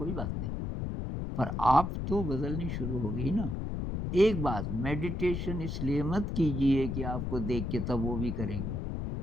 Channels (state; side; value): noise; left; rumble, 3 dB below the sound